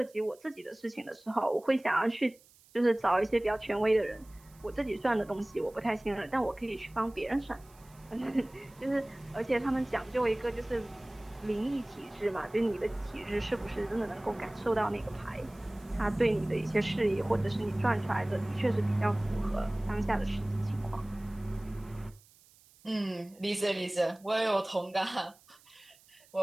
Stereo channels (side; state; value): right; noise; hiss, 27 dB below the sound